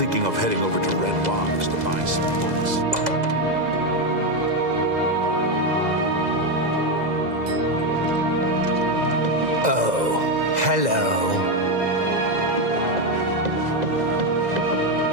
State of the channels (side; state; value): left; late; 2.0 ms